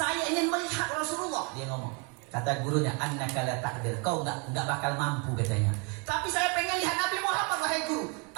ingin melihat Rasulullah." Dia ngomong, kata gurunya, "Annaka la taqdir." Kau enggak bakal mampu, katanya. "Tapi saya pengen lihat Nabi Muhammad, wahai guru."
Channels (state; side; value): quieter; left; 32.6 dB